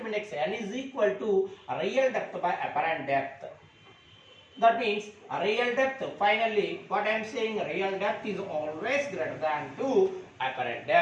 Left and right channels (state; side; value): identical; both; correlation 1.00